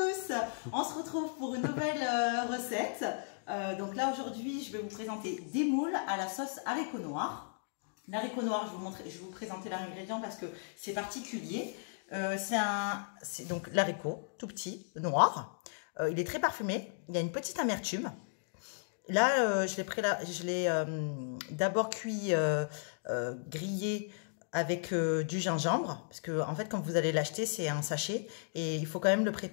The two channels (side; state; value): right; silent; digital silence